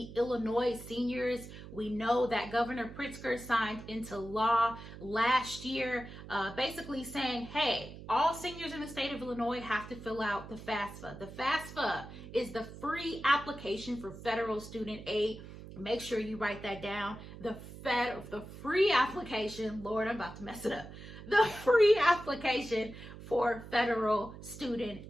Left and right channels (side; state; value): right; noise; hum, 14 dB below the sound